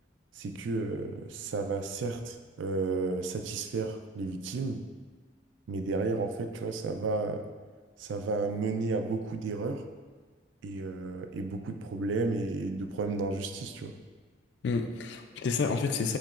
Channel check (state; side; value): normal; both; correlation 0.39